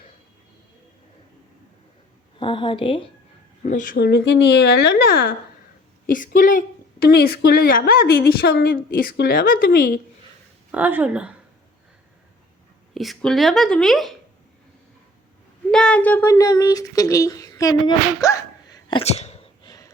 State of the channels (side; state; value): both; normal; correlation 0.53